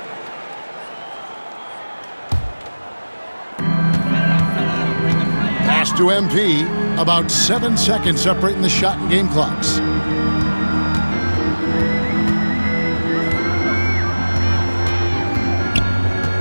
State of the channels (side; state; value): both; inverted; correlation -1.00